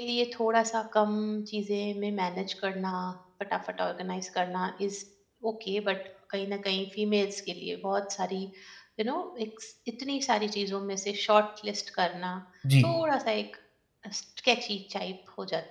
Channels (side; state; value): both; identical; correlation 1.00